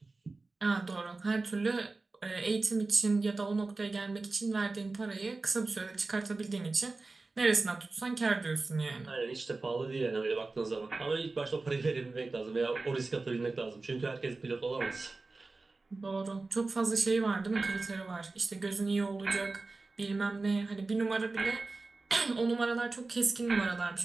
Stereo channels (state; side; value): quieter; left; 3.5 dB